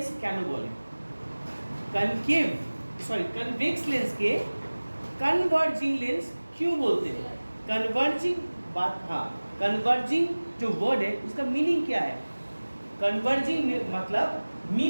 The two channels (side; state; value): both; inverted; correlation -1.00